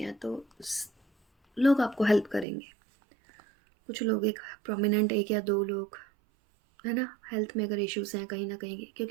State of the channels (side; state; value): left; drops out; at 2.5 s